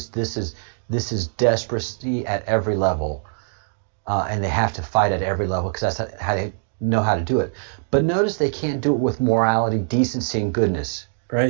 is desperacy at every level, and they have to fight at every level because that's how they know how to do it. But notice they can't do it with morality, decency, and goodness.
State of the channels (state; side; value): silent; left; digital silence